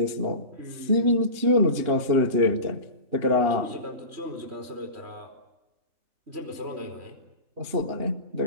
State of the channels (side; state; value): left; late; 2.8 ms